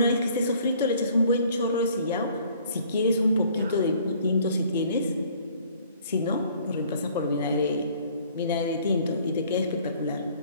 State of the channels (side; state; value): both; inverted; correlation -0.57